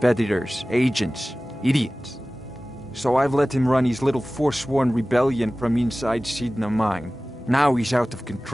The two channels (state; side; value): normal; both; correlation 0.97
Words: agents, idiots. So I've let him run his little forsworn rebellion from inside Sidna Mine. Now he's out of